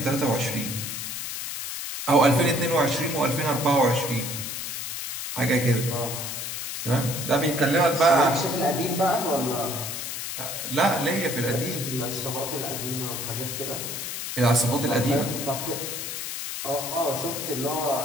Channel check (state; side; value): noise; left; hiss, 5 dB below the sound